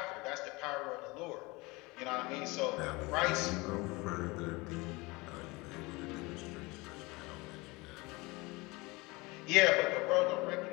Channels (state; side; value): quieter; right; 24.0 dB